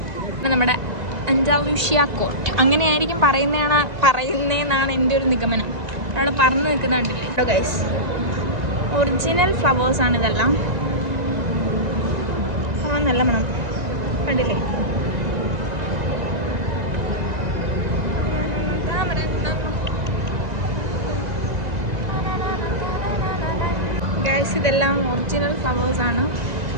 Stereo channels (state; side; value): late; left; 2.0 ms